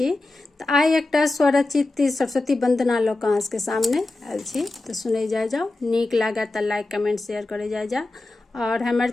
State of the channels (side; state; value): right; quieter; 3.0 dB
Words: तो आइ एकटा स्वरचित सरस्वती वंदना लऽ कऽ अहाँके सामने आयल छी। तो सुनै जाओ, नीक लागे तो लाइक कमेंट शेयर करे जाओ। और हमर